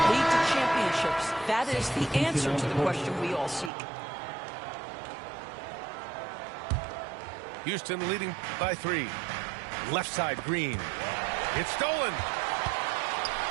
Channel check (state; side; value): drops out; left; at 3.7 s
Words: lead to championships? That is the answer to the question we all seek. Houston leading by 3. Left side, Green. It's stolen.